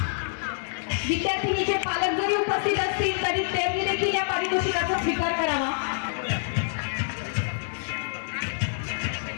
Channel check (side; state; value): right; silent; digital silence